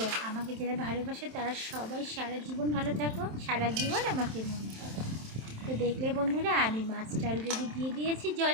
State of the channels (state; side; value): late; left; 27 ms